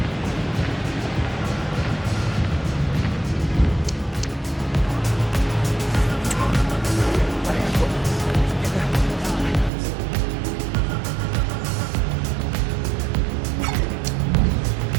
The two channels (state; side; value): drops out; left; at 9.7 s